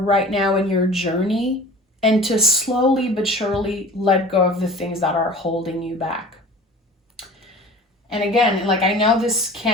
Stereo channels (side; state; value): both; normal; correlation 0.42